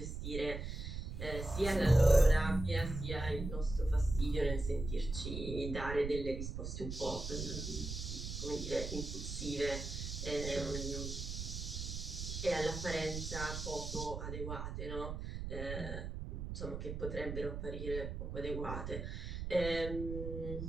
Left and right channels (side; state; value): right; noise; rumble, 5 dB below the sound